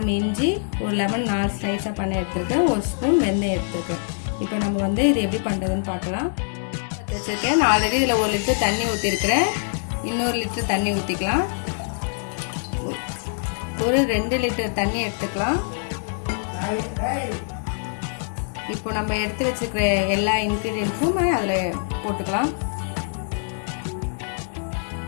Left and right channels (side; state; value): right; silent; digital silence